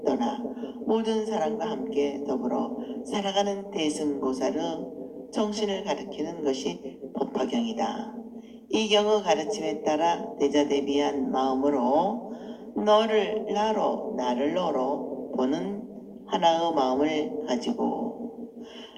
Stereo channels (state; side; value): identical; both; correlation 1.00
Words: 떠나 모든 사람과 함께 더불어 살아가는 대승보살의 정신을 가리키는 것이 법화경이다. 이 경의 가르침에 따라 대자대비한 마음으로 너를 나로 나를 너로 보는 하나의 마음을 가지고